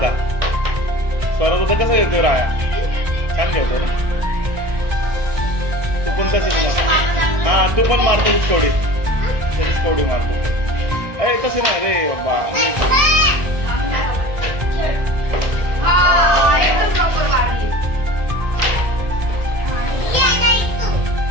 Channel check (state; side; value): late; left; 1.6 ms